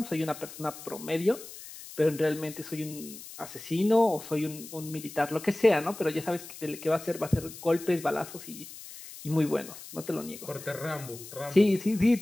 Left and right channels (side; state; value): left; noise; hiss, 14 dB below the sound